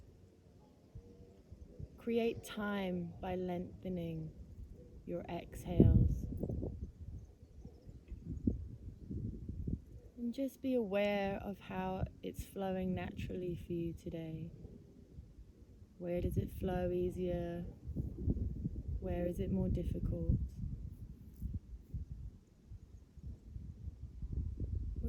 Create time by lengthening your exhales. And just be aware of how it's flowing naturally for you today. Where does it flow easier? Where is it more difficult?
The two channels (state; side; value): identical; both; correlation 1.00